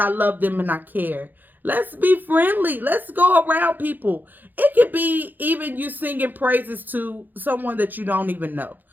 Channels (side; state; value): left; late; 0.087 ms